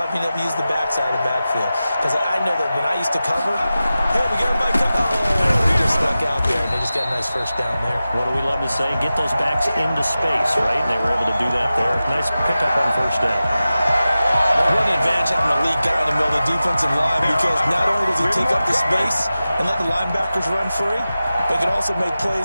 being able to use the backside of the backfield. Because I know that when I used to cover, hey, we got everybody cover. Oh, he just stuck out there, and they just got a nice first down there. What do we love to say? Get those backs into space, right? And they were able to do that there. Nice pickup on first down. What an advantage having a lead guy in the middle of the defensive line, because not only does he take up the space and let the linebackers run free, but he can also make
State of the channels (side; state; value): both; inverted; correlation -0.94